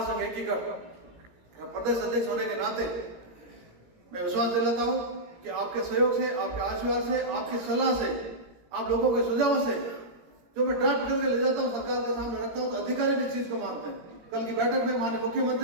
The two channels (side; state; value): left; late; 17 ms